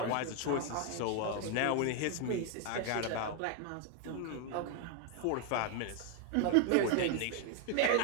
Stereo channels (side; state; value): both; different; correlation 0.01